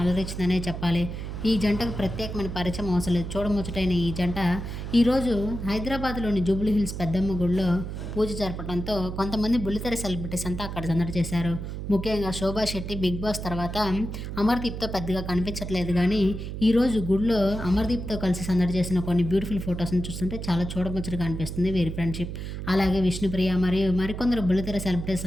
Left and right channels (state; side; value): noise; right; hum, 6 dB below the sound